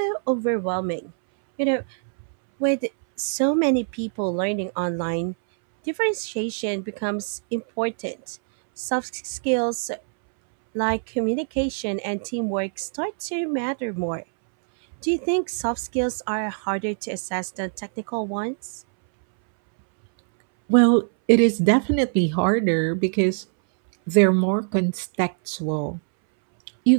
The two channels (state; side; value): silent; left; 63 dB below the other